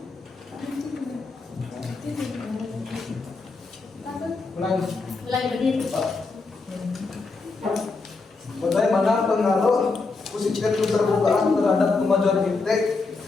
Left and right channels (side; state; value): right; quieter; 4.0 dB